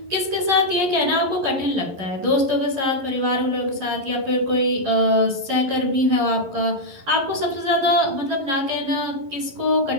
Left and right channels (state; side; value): late; left; 11 ms